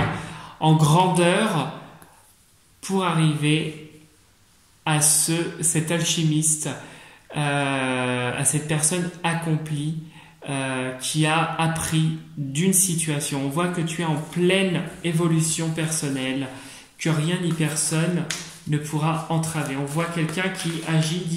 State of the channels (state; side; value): identical; both; correlation 1.00